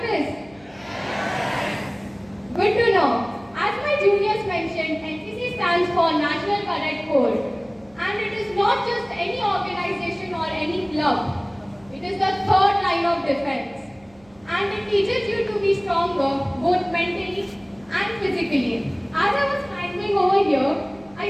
Good to know. As my juniors mentioned, NCC stands for National Cadet Corps. And it is not just any organization or any club. It is the third line of defense. And it teaches you to be stronger, both mentally and physically. As I was climbing over here,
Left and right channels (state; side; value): noise; right; hum, 28 dB below the sound